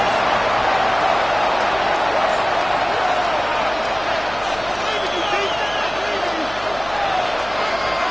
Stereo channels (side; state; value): right; noise; hum, 18 dB below the sound